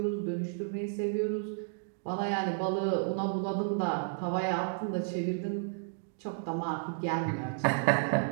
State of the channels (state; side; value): silent; left; digital silence